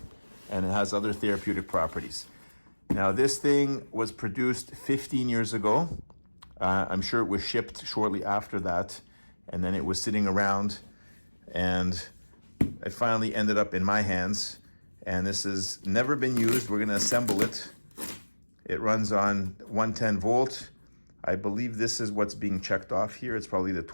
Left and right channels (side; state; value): both; inverted; correlation -1.00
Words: and it has other therapeutic properties. Now this thing was produced 15 years ago. I'm sure it was shipped shortly after that, and then it was sitting around, and it finally ended up in my hands, and this has never been used. We're going to assemble it. It runs on 110 volt. I believe this is what's being checked off here. It's probably the